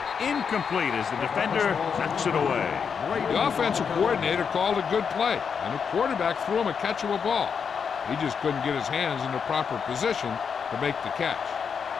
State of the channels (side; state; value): right; quieter; 6.5 dB